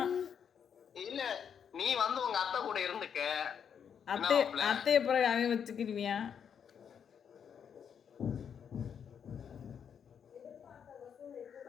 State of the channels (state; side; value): quieter; right; 7.7 dB